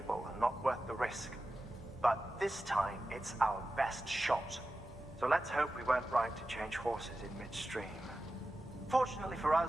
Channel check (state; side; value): normal; both; correlation 0.93